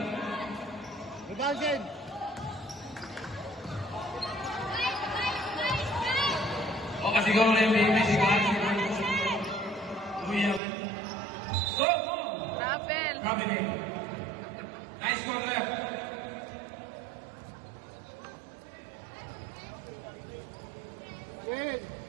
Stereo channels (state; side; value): drops out; left; at 10.6 s